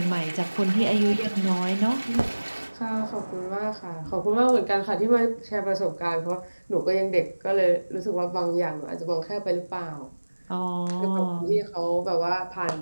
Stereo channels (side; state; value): both; inverted; correlation -1.00